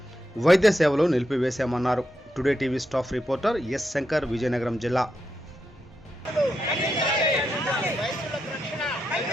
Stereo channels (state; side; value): normal; both; correlation 0.84